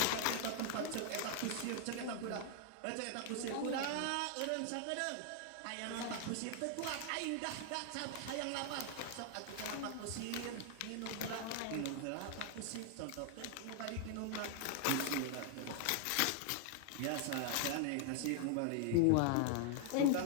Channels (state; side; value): different; both; correlation 0.00